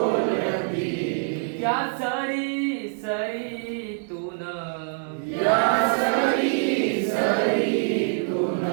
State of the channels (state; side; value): silent; left; 62 dB below the other